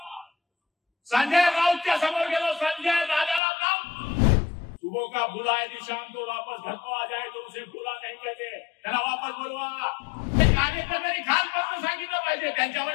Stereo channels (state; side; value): drops out; right; at 3.4 s